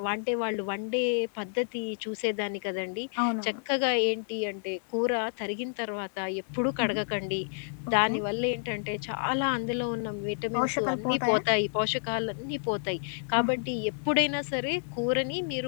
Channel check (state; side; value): silent; right; digital silence